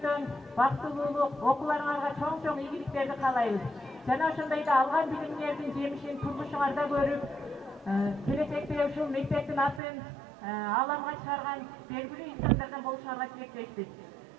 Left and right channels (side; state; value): left; drops out; at 9.8 s